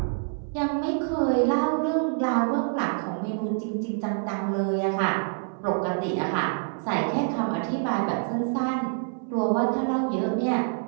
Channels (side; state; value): left; silent; 61 dB below the other